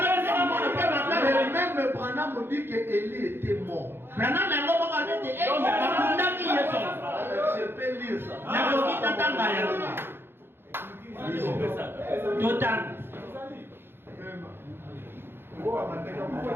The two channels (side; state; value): left; late; 0.11 ms